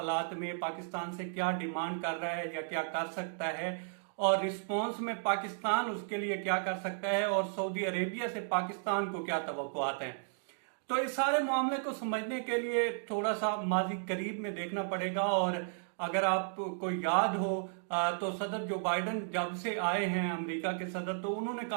में पाकिस्तान से क्या डिमांड कर रहा है या क्या कर सकता है, और रिस्पॉन्स में पाकिस्तान उसके लिए क्या कर सकता है, और सऊदी अरेबिया से पाकिस्तान को क्या तवक्कुआत हैं। तो इस सारे मामले को समझने के लिए थोड़ा सा माजी करीब में देखना पड़ेगा। और अगर आपको याद हो तो सदर जो बाइडन जब से आए हैं अमेरिका के सदर, तो उन्होंने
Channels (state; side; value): silent; left; digital silence